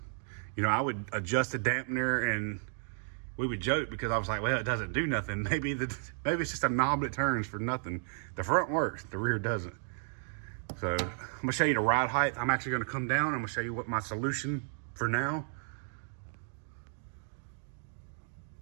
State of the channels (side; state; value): left; silent; digital silence